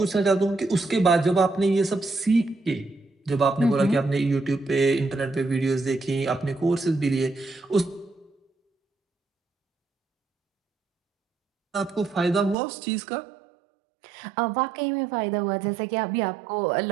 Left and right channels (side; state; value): left; drops out; at 12.6 s